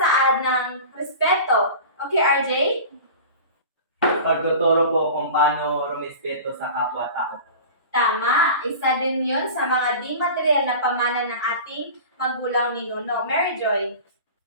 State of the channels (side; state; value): both; inverted; correlation -0.36